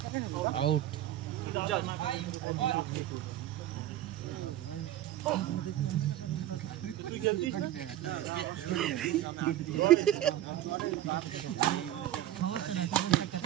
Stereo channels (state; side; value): quieter; left; 13.0 dB